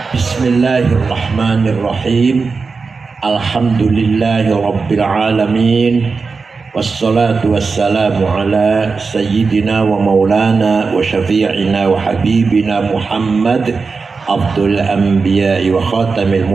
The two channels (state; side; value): quieter; left; 4.6 dB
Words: Bismillahirrahmanirrahim. Alhamdulillahi rabbil alamin. Wassalatu wassalamu ala sayyidina wa maulana wa syafi'ina wa habibina Muhammad Abdul anbiya'i wa khatamil